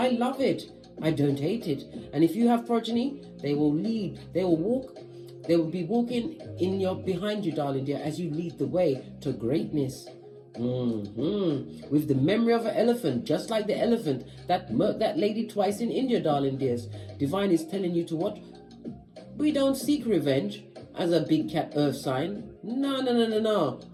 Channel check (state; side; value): identical; both; correlation 1.00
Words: love it. I don't hate it. And if you have progeny, they will lead, they will walk, they will be walking behind you, darling dear, as you lead the way to greatness. With the memory of an elephant, just like the elephant that murked that lady twice in India, darling dears. Divine is telling you to what? We don't seek revenge as a big cat earth sign. No.